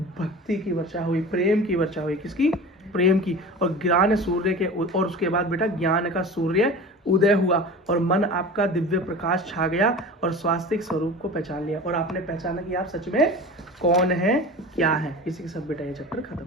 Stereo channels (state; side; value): normal; both; correlation 0.34